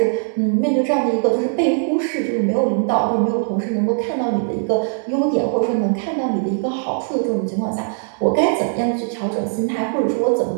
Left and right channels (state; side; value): silent; left; digital silence